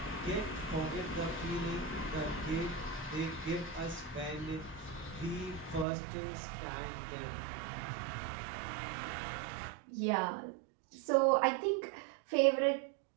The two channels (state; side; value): drops out; left; at 5.9 s